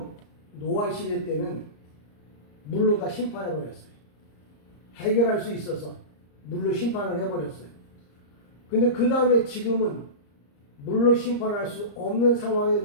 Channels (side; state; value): right; late; 34 ms